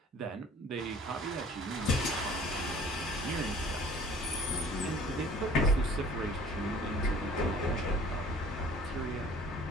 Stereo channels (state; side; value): normal; both; correlation 0.50